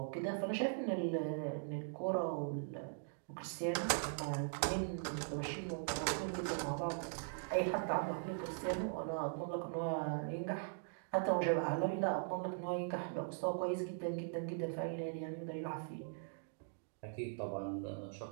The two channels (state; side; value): silent; left; digital silence